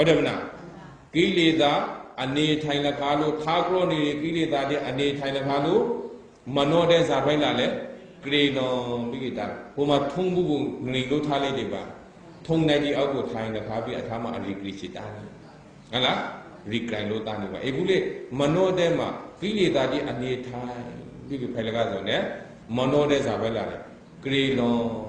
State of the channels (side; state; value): both; identical; correlation 1.00